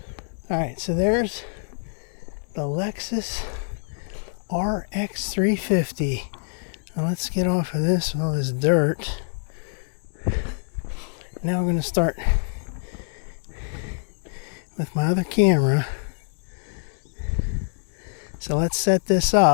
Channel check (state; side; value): silent; right; 62 dB below the other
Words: Alright, so there's the Lexus RX 350. Now let's get off of this with all this dirt. Now we're going to start with my other camera. So let's set this